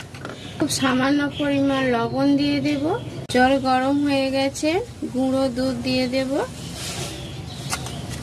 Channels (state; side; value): identical; both; correlation 1.00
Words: খুব সামান্য পরিমাণ লবণ দিয়ে দেব। জল গরম হয়ে গেছে, গুঁড়ো দুধ দিয়ে দেব।